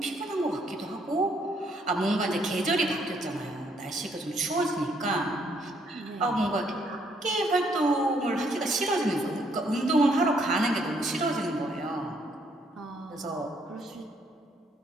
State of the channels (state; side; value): normal; both; correlation 0.69